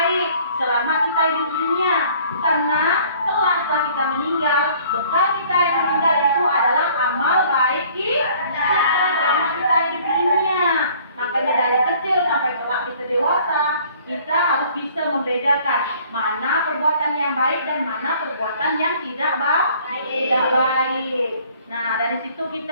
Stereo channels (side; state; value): both; inverted; correlation -0.55